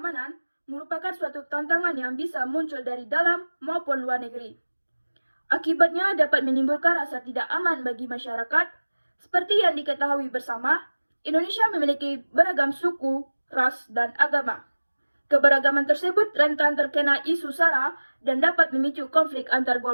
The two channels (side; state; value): both; inverted; correlation -1.00